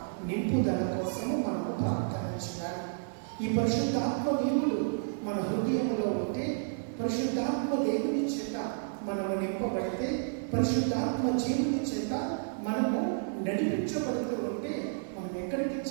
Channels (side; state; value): left; silent; digital silence